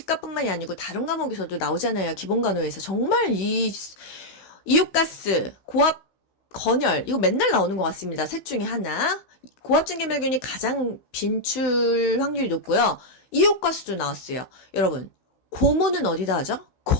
아니고 다른 과목에서도 나오잖아요. 기본간호에서. 정말 이웃가스, 고압, 건열 이거 맨날 나오는 것 같습니다. 셋 중에 하나. 고압증기멸균이 가장 빈출 확률이 높고요. 이웃가스도 나왔어요. 여러분 고무는 어디다 하죠?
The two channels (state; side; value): late; right; 15 ms